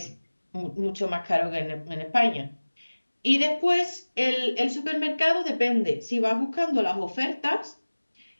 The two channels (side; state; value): both; inverted; correlation -1.00